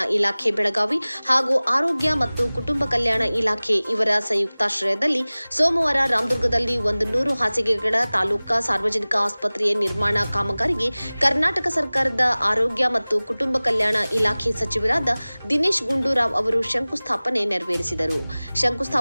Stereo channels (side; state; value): both; inverted; correlation -0.99